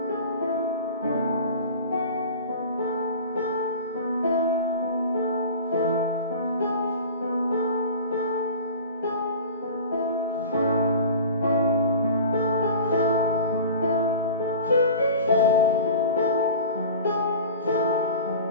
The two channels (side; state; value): both; inverted; correlation -0.37